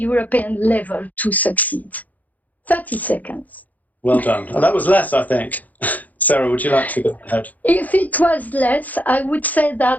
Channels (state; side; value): late; right; 0.080 ms